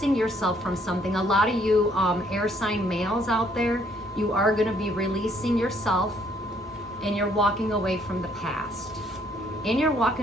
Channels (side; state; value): both; normal; correlation 0.66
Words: yourself from something. A lot of you air sign males out there, you are going to be releasing yourself, and you're walking away from the past. And you're